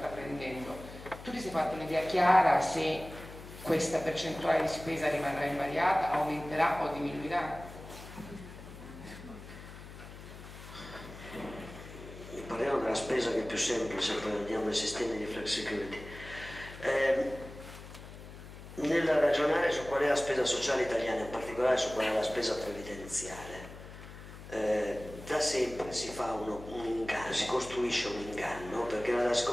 Tu ti sei fatto un'idea chiara se questa percentuale di spesa rimarrà invariata, aumenterà o diminuirà? Parliamo della spesa che è più semplice, poi andiamo ai sistemi di flexicurity. Nel ragionare su qual è la spesa sociale italiana, in particolare su qual è la spesa previdenziale, da sempre si fa un inganno, si costruisce un inganno, perché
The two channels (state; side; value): noise; left; hum, 14 dB below the sound